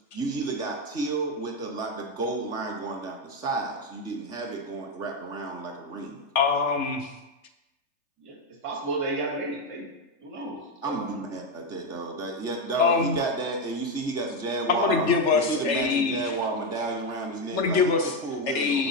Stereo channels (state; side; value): late; right; 3.3 ms